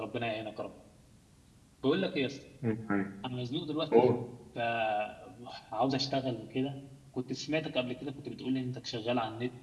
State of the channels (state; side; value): identical; both; correlation 1.00